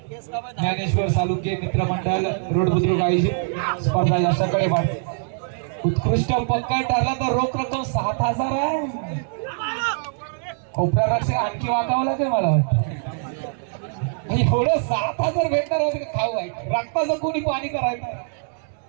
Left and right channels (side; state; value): left; silent; digital silence